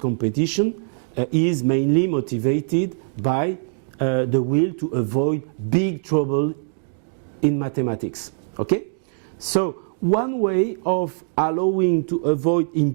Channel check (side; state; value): left; silent; digital silence